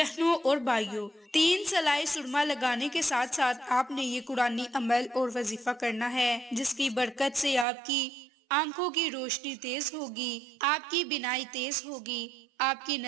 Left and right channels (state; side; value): drops out; left; at 7.7 s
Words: اور بھائیوں، 3 سلائی سرما لگانے کے ساتھ ساتھ آپ نے یہ قرآنی عمل اور وظیفہ کرنا ہے، جس کی برکت سے آپ کی آنکھوں کی روشنی تیز ہوگی، آپ کی بینائی تیز ہوگی، آپ کی